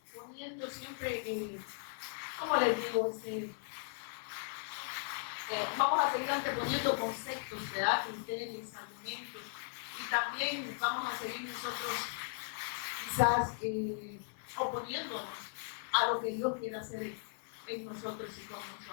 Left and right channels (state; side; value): silent; right; 53 dB below the other